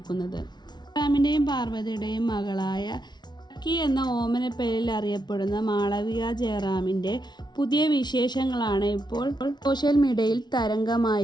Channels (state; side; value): late; right; 0.20 ms